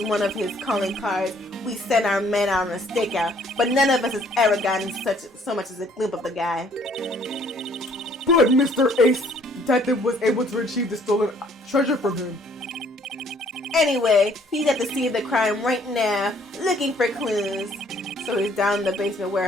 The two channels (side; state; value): both; normal; correlation 0.61